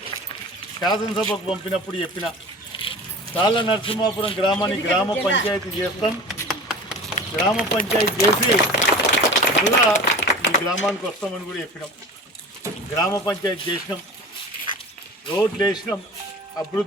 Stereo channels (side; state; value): both; normal; correlation 0.37